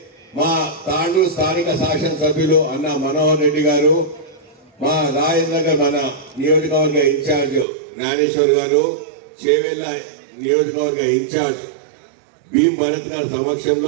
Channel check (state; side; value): drops out; left; at 7.7 s